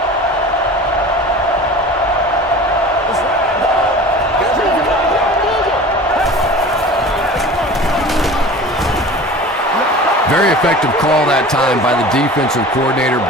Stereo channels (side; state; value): both; normal; correlation 0.38